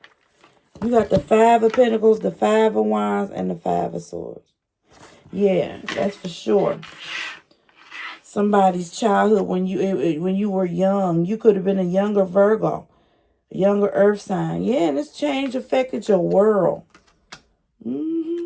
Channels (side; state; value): both; identical; correlation 1.00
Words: You got the Five of Pentacles, the Five of Wands, and the Five of Swords. Yeah, that's for sure. Somebody's childhood when you were young. You could have been a younger Virgo, a younger Earth sign. Yeah, and this change affected your world.